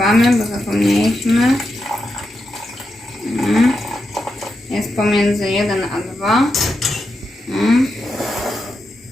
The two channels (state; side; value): normal; both; correlation 0.87